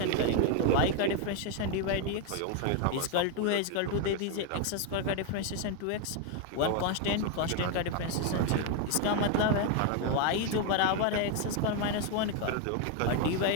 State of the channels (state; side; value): different; both; correlation 0.01